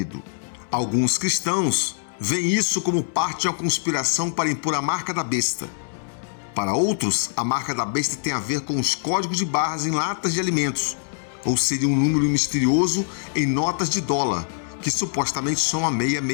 Alguns cristãos veem isso como parte de uma conspiração para impor a marca da besta. Para outros, a marca da besta tem a ver com os códigos de barras em latas de alimentos, ou seria um número misterioso em notas de dólar, que supostamente são a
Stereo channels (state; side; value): silent; right; digital silence